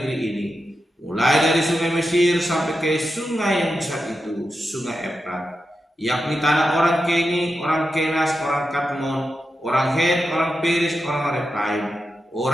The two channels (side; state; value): both; normal; correlation 0.89